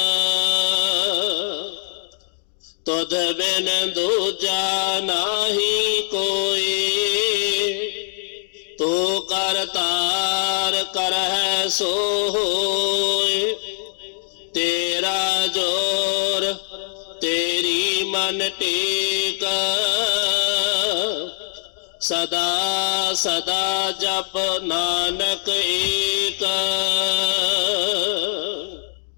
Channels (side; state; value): right; silent; digital silence